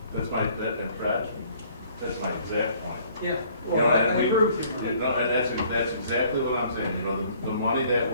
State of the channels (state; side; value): inverted; both; correlation -0.59